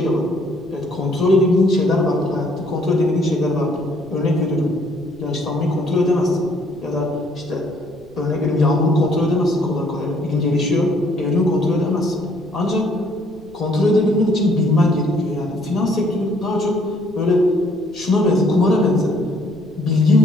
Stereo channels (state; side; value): noise; right; rumble, 26 dB below the sound